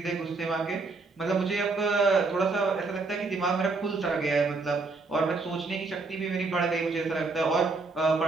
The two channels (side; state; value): left; quieter; 3.8 dB